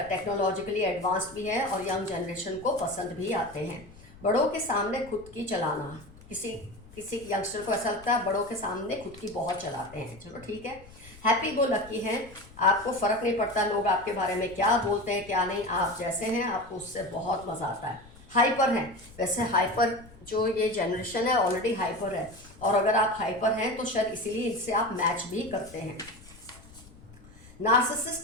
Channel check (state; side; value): noise; left; rumble, 21 dB below the sound